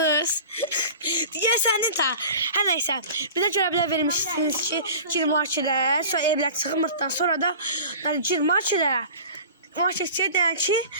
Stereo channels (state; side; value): inverted; both; correlation -0.39